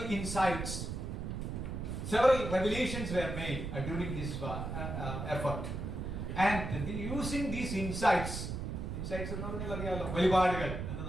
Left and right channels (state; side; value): noise; right; rumble, 4 dB below the sound